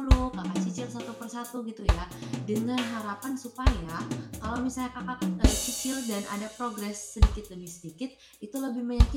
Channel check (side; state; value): both; identical; correlation 1.00